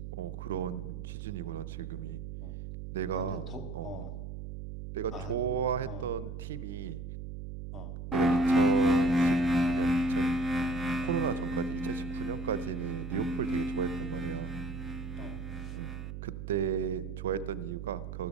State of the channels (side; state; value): right; noise; hum, 8 dB below the sound